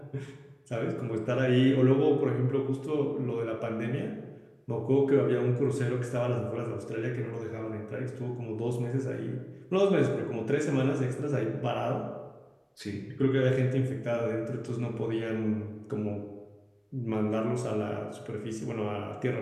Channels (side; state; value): both; identical; correlation 1.00